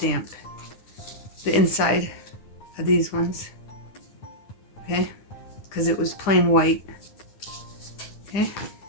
the inside of these ones. Okay? Because it was plain white. Okay?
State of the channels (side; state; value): right; late; 9.9 ms